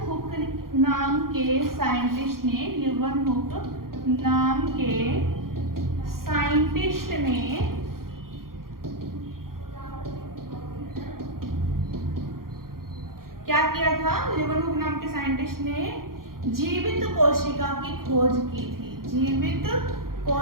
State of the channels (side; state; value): left; late; 0.92 ms